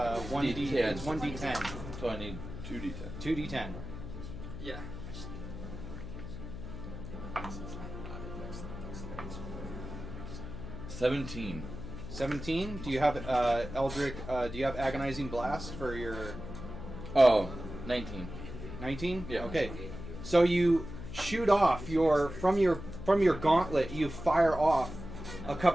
D10. It's 1d10. So I need 2d10. 2d10. Yeah. 17. 17. Do you have Eldritch? Do you have Agonizing Blast for your Oh, 19. 19? Yeah. Okay. So you shoot off from your gauntlet. You fire off a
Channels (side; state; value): left; noise; hum, 10 dB below the sound